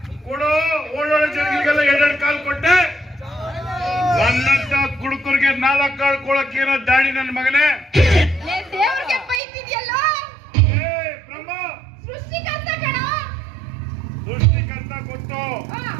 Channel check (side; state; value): left; drops out; at 9.4 s